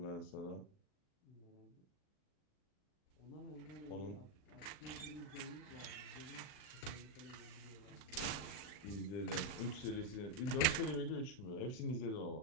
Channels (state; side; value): late; right; 39 ms